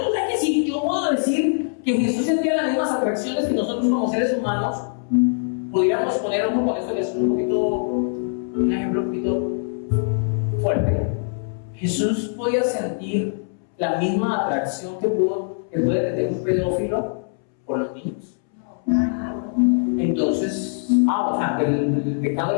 O sea que si yo puedo decir que Jesús sentía las mismas atracciones que nosotros como seres humanos, podríamos poner un poco con esto que es un ejemplo un poquito fuerte. Jesús podía sentir la misma atracción que puede tener un pedófilo por los niños. Entonces, o sea, que el pecado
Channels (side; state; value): right; silent; 64 dB below the other